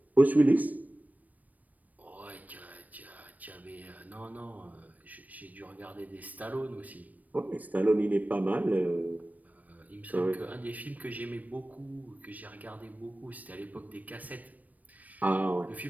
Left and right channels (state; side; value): late; left; 0.077 ms